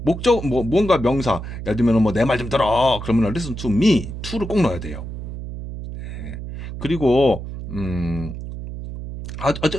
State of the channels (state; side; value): noise; right; hum, 9 dB below the sound